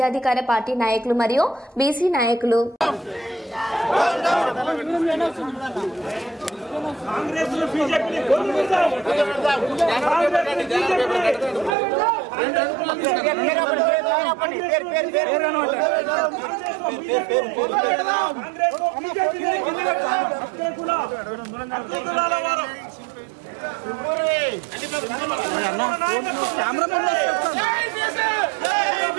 పార్టీ నాయకులు మరియు బీసీ నాయకులు.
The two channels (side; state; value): left; drops out; at 11.8 s